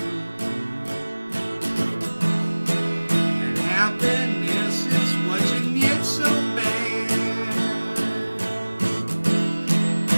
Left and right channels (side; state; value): both; inverted; correlation -1.00